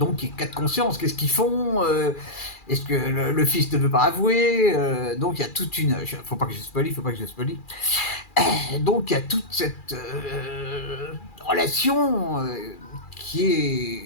cas de conscience, qu'est-ce qu'ils font? Est-ce que le fils ne veut pas avouer? Donc, il y a toute une... Faut pas que je spoilie. Donc, il y a toute cette relation qui est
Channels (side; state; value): right; late; 2.4 ms